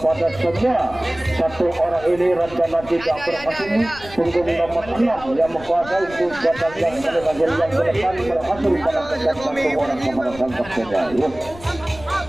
semua satu orang ini rencana tidak berhasil, punggung nomor 6 yang menguasai kotak yang paling akhir yang ke depan berhasil pada satu orang kepada sang kapten.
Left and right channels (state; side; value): noise; left; rumble, 17 dB below the sound